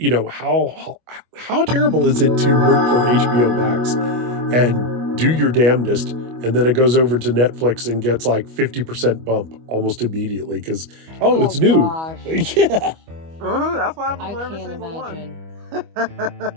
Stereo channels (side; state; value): left; late; 25 ms